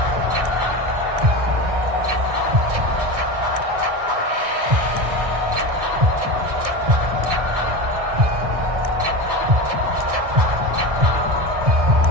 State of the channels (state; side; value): late; left; 1.6 ms